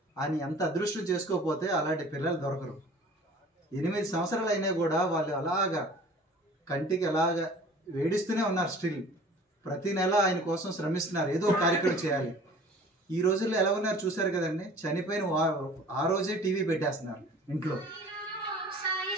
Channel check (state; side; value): normal; both; correlation 0.47